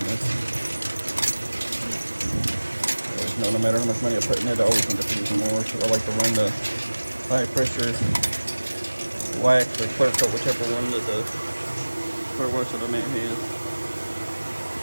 this. No matter how much money I put in it, I always end up using more, so I like to run the high pressure wax or clear coat, whichever one that the clear wash that I may have.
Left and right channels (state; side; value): inverted; both; correlation -1.00